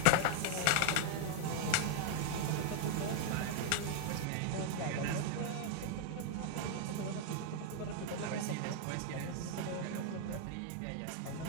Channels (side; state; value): both; different; correlation 0.00